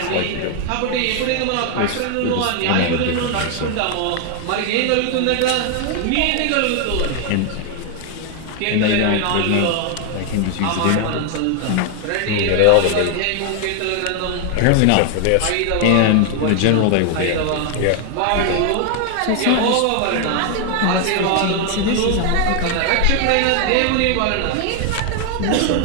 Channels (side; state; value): both; different; correlation 0.00